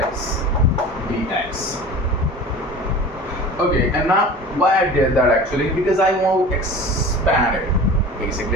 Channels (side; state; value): both; normal; correlation 0.38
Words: dx. Okay, and now why I did that actually? Because I want to expand it.